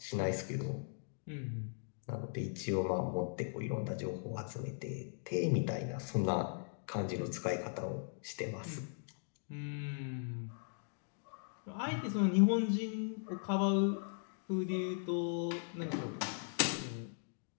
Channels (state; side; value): silent; right; digital silence